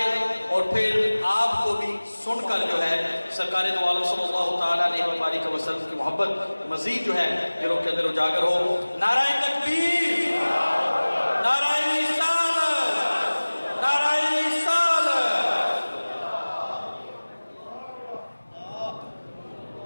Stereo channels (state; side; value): inverted; both; correlation -1.00